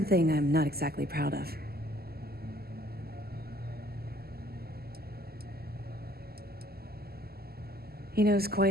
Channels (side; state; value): left; late; 0.45 ms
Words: I'm not exactly proud of. He knows